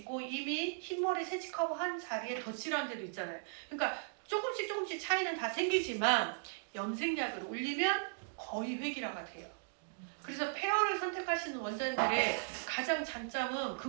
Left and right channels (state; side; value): silent; left; digital silence